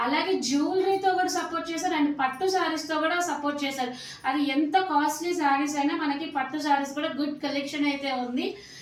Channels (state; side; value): identical; both; correlation 1.00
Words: అలాగే జ్యువెలరీతో కూడా సపోర్ట్ చేశారు అండ్ పట్టు శారీస్తో కూడా సపోర్ట్ చేశారు. అది ఎంత కాస్ట్లీ శారీస్ అయినా మనకి పట్టు శారీస్ కూడా గుడ్ కలెక్షన్ అయితే ఉంది.